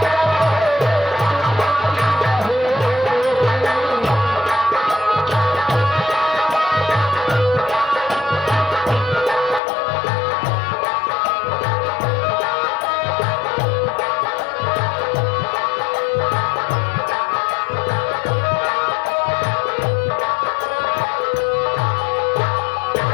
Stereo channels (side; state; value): right; drops out; at 9.6 s